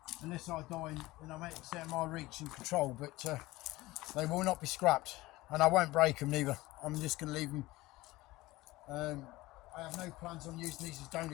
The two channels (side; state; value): right; quieter; 19.2 dB